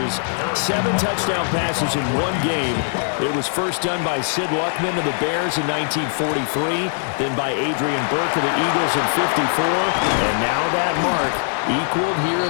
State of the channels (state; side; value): silent; right; digital silence